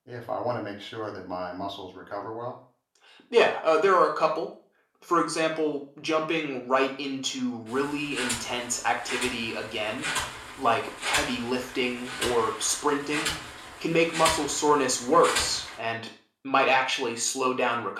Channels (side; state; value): both; identical; correlation 1.00